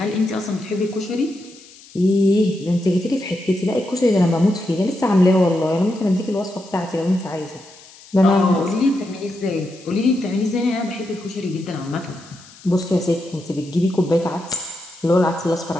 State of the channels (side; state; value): left; noise; hiss, 22 dB below the sound